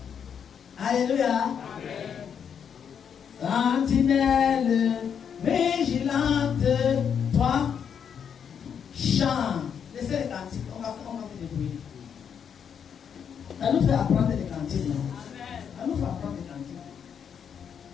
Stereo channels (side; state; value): right; quieter; 7.6 dB